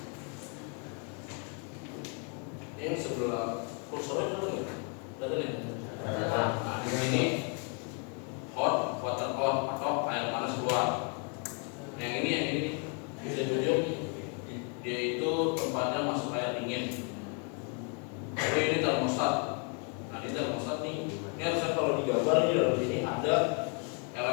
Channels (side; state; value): right; quieter; 36.7 dB